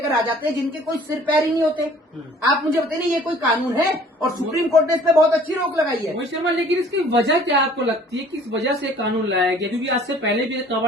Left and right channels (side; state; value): both; normal; correlation 0.53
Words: आ जाते हैं जिनके कोई सिर पैर ही नहीं होते। आप मुझे बताइए ये कोई कानून है? और सुप्रीम कोर्ट ने इस पर बहुत अच्छी रोक लगाई है। मोहित शर्मा, लेकिन इसकी वजह क्या आपको लगती है, किस वजह से कानून लाया गया? क्योंकि आज से पहले भी